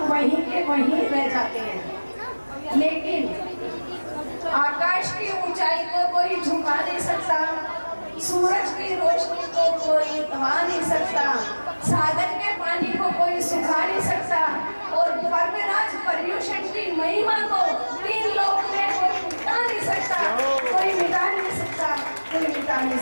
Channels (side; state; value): both; inverted; correlation -1.00